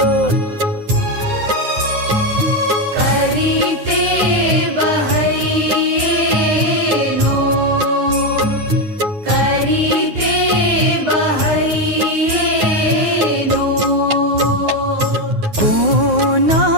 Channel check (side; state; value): left; late; 9.5 ms